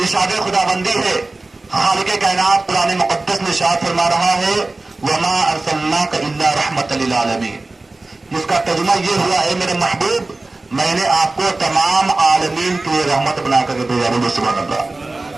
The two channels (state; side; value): quieter; left; 3.1 dB